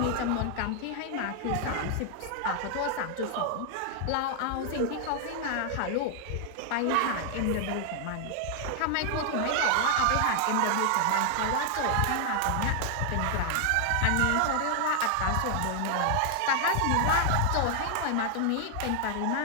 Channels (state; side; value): different; both; correlation 0.00